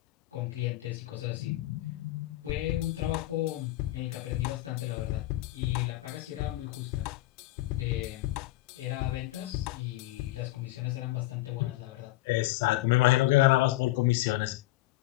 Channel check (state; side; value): quieter; right; 17.7 dB